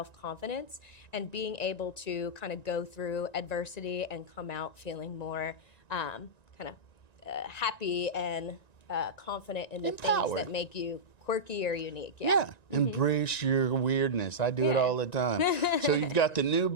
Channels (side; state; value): right; late; 1.9 ms